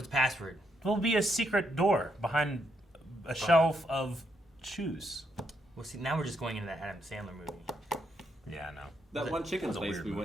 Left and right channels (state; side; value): normal; both; correlation 0.78